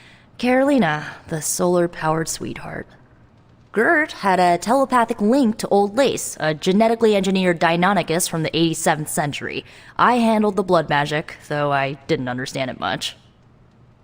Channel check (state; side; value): identical; both; correlation 1.00